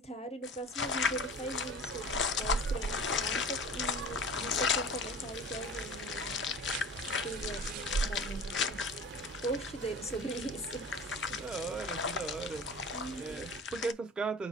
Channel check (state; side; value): normal; both; correlation 0.40